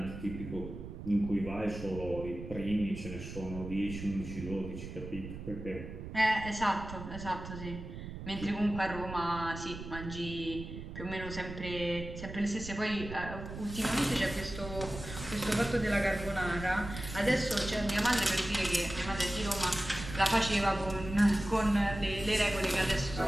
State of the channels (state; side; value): noise; right; rumble, 10 dB below the sound